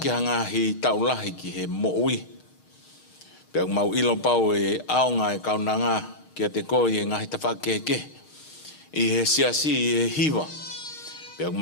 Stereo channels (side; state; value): right; late; 6.5 ms